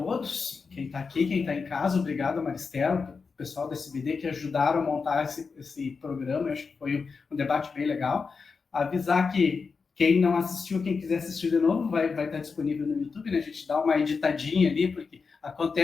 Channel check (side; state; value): right; quieter; 5.0 dB